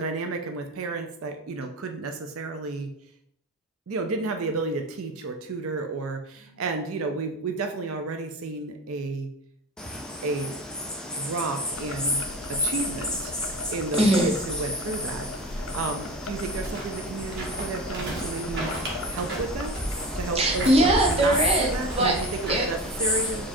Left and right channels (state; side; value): normal; both; correlation 0.31